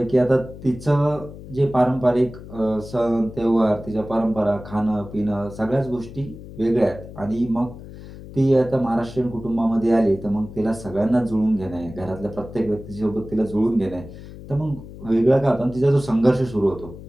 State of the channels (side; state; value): left; noise; hum, 15 dB below the sound